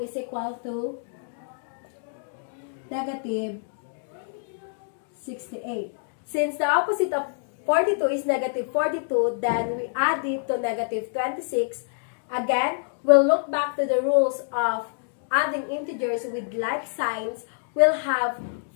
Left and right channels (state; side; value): silent; right; digital silence